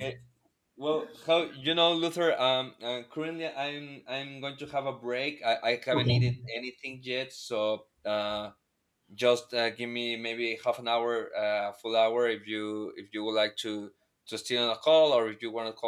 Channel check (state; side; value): identical; both; correlation 1.00